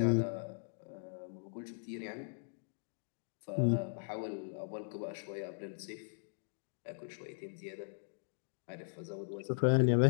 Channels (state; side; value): silent; right; digital silence